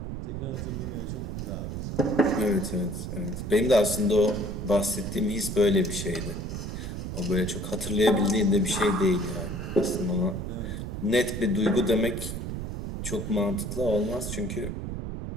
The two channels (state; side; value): noise; right; rumble, 5 dB below the sound